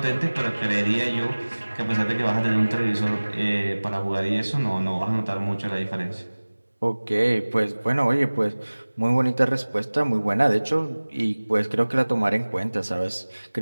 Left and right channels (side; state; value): both; inverted; correlation -1.00